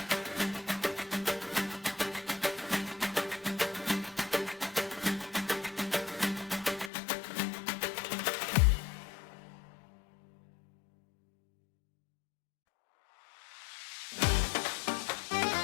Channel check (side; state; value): right; drops out; at 6.9 s